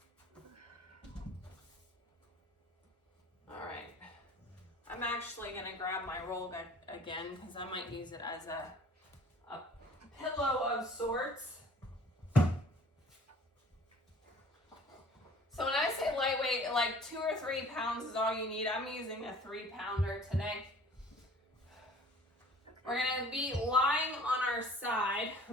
All right. I'm actually going to grab my roll again because I might use it as a pillow of sorts. So when I say lightweight, like 2 or 3 pounds is all you need. I'm using a 3-pounder today. We're going to be lying on our side.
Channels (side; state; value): both; normal; correlation 0.50